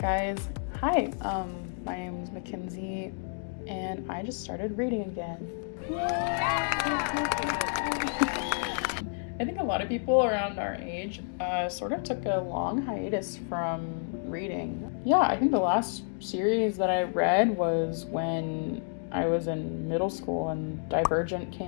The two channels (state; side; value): silent; right; digital silence